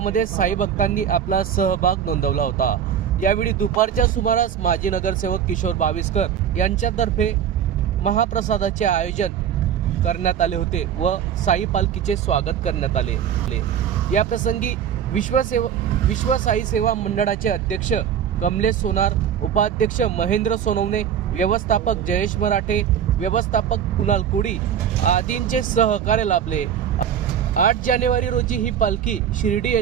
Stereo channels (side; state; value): left; quieter; 8.9 dB